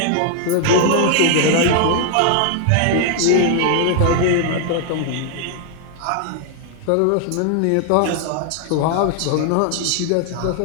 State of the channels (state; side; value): different; both; correlation 0.00